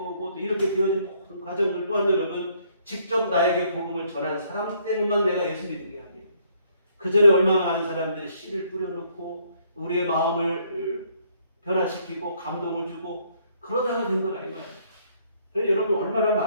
또 이렇게 되어진 모든 과정들 또한 여러분 직접 나에게 복음을 전한 사람 때문만 내가 예수 믿은 게 아니에요. 그 전에 얼마나 많은 사람들이 씨를 뿌려놓고 우리의 마음을 변화시키고 감동을 주고 그러다가 된 거라 이 말이에요. 그래서 여러분 얼마나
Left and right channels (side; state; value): both; inverted; correlation -0.67